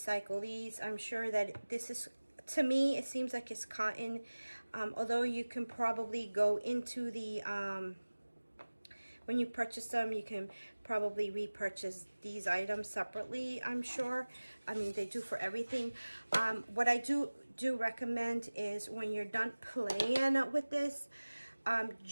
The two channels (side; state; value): both; inverted; correlation -1.00